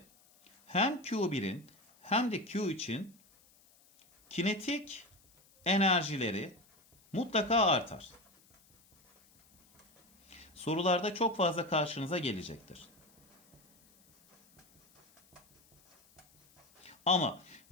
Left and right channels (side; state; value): left; noise; hiss, 30 dB below the sound